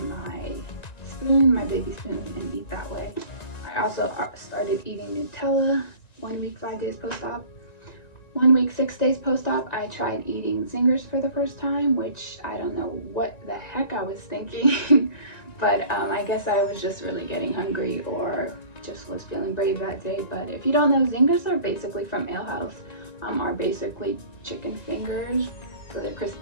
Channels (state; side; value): late; right; 1.9 ms